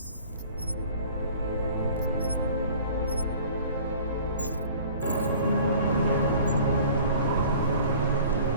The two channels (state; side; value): inverted; both; correlation -0.47